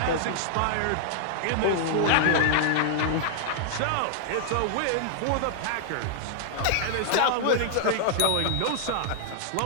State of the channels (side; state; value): both; different; correlation -0.01